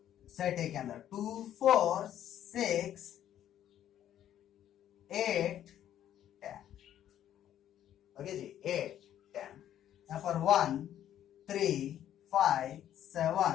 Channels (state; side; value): quieter; right; 11.2 dB